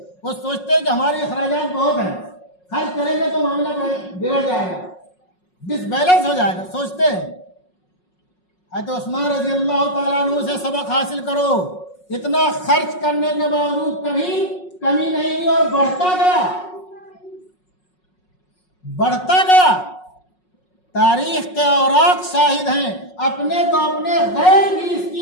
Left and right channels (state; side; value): late; right; 5.5 ms